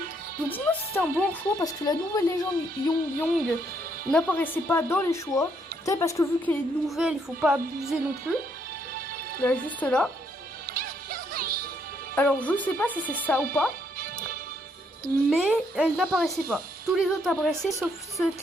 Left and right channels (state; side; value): normal; both; correlation 0.72